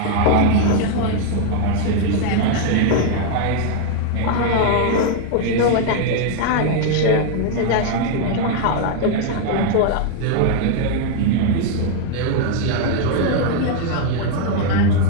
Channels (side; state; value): both; different; correlation 0.00